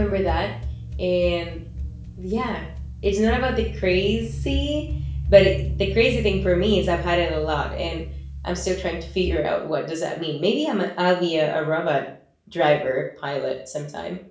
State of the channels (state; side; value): identical; both; correlation 1.00